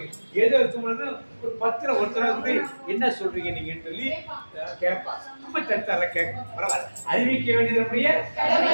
ஏதோ இருக்கும் பொழுது ஒரு 10ல் ஒருத்தர வந்து என்ன சொல்றீங்க நீங்கன்னு சொல்லி கேட்பா. நம்ம சர்ச்சால கேட்க பரவாயில்ல, அறிவிக்க வேண்டியது.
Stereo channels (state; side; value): inverted; both; correlation -1.00